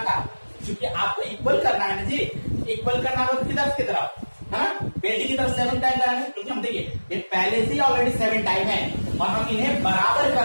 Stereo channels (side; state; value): both; inverted; correlation -1.00